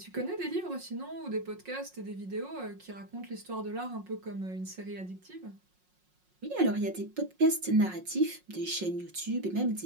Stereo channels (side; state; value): left; late; 5.5 ms